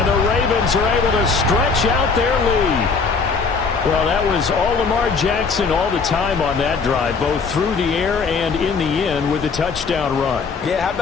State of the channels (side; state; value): right; quieter; 5.0 dB